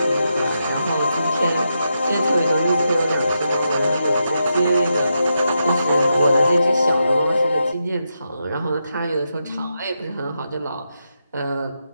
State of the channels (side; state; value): both; inverted; correlation -0.85